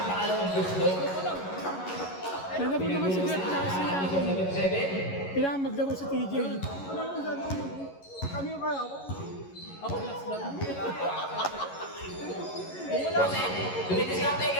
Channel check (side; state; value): right; late; 11 ms